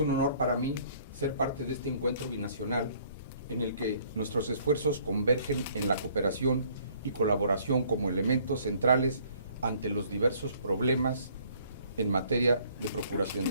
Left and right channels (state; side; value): inverted; both; correlation -0.60